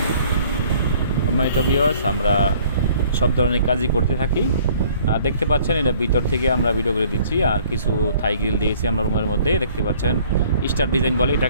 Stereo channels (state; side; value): inverted; both; correlation -0.56